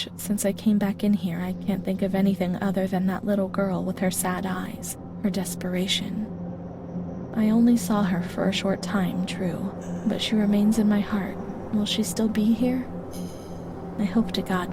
since I came back in here I can't think of anything other than that little girl with her sad eyes, her desperation. I only saw her for a short time, true, but she remains in my heart. Will she still be here? I hope to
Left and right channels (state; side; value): identical; both; correlation 1.00